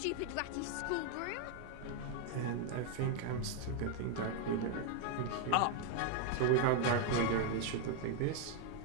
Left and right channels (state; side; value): different; both; correlation 0.00